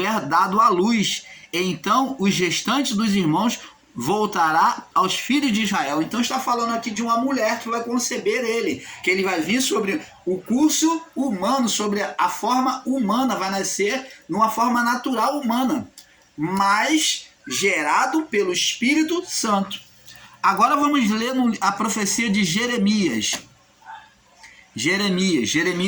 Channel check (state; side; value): identical; both; correlation 1.00